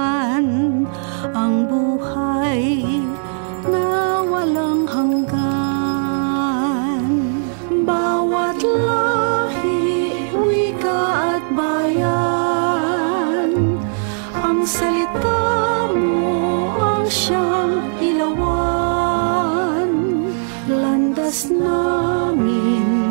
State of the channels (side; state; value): left; silent; 61 dB below the other